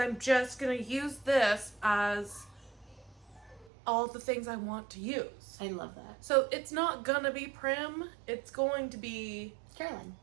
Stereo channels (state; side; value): drops out; left; at 3.7 s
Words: just going to use this as all the things I want to use. I love that. So it's not gonna be prim. It's going to be Caroline.